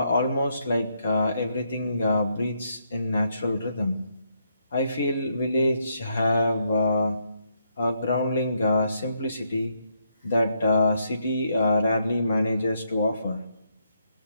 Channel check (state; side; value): inverted; both; correlation -0.77